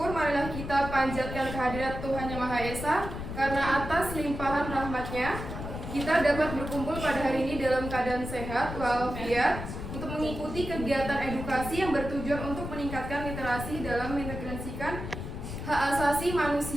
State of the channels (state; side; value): noise; left; rumble, 7 dB below the sound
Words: marilah kita panjatkan kehadirat Tuhan Yang Maha Esa, karena atas limpahan rahmat-Nya kita dapat berkumpul pada hari ini dalam keadaan sehat walafiat untuk mengikuti kegiatan edukasi yang bertujuan untuk meningkatkan literasi dalam mengintegrasikan hak asasi